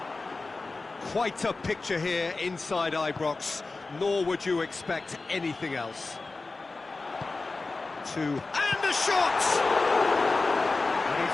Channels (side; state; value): right; quieter; 3.6 dB